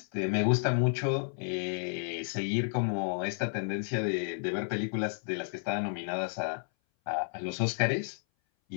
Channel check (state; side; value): silent; right; 57 dB below the other